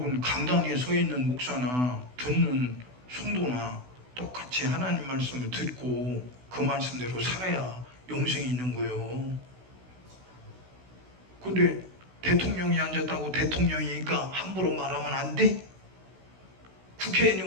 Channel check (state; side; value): late; left; 16 ms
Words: 강단에 서 있는 목사나 듣는 성도나 똑같이 하나님 말씀을 듣고 그 말씀대로 살아야 영생이 있는 거예요. 근데 대통령이 앉았다고 대통령이니까 함부로 말하면 안 돼?